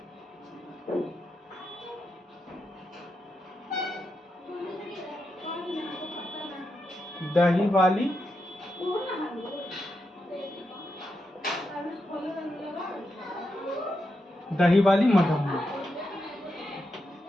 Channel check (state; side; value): normal; both; correlation 0.85